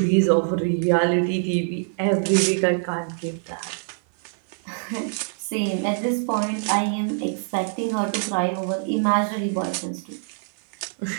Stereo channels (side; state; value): left; silent; 60 dB below the other